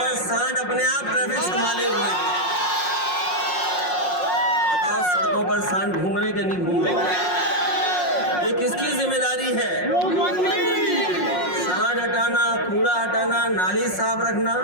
अपने आप ट्रैफिक संभाले हुए हैं। बताओ, सड़कों पर सांड घूम रहे कि नहीं घूम रहे? ये किसकी जिम्मेदारी है? सांड हटाना, कूड़ा हटाना, नाली साफ रखना,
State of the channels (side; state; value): right; late; 5.5 ms